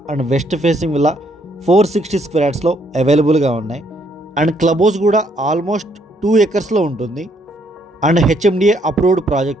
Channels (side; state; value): both; normal; correlation 0.69